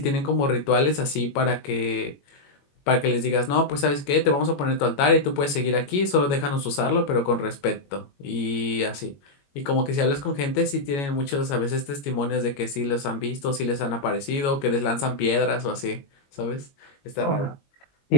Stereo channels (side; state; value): right; late; 21 ms